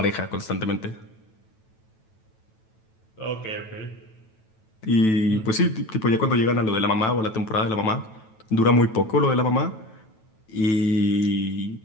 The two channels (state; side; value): late; right; 9.1 ms